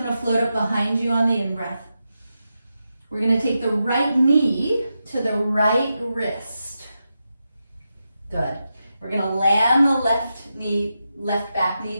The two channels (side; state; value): both; inverted; correlation -0.89